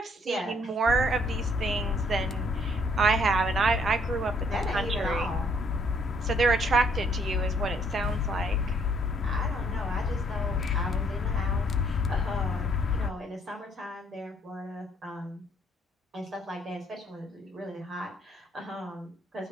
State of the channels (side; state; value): both; normal; correlation 0.65